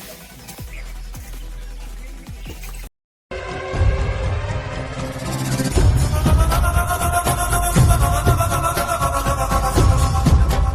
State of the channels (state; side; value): identical; both; correlation 1.00